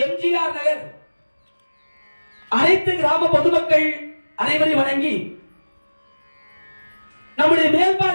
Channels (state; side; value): inverted; both; correlation -1.00